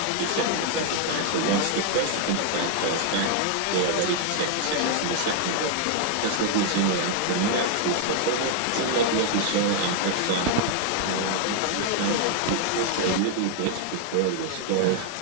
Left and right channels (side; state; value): both; different; correlation 0.00